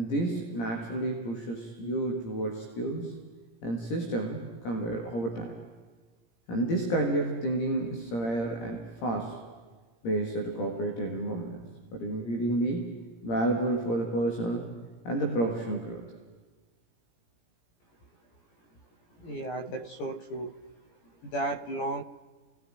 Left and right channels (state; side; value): late; right; 17 ms